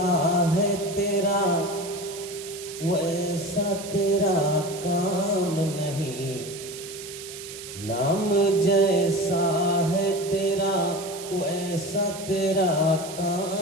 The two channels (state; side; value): noise; right; hiss, 12 dB below the sound